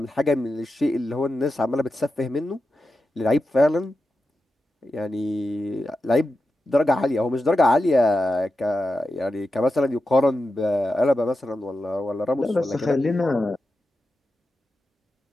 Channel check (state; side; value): normal; both; correlation 0.90